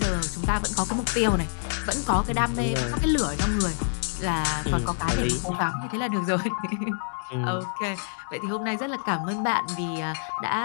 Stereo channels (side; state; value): right; silent; digital silence